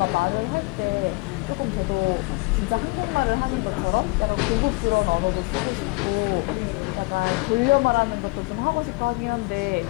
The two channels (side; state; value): right; quieter; 26.5 dB